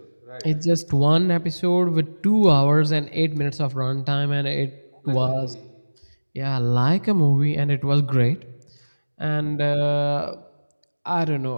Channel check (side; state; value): both; inverted; correlation -1.00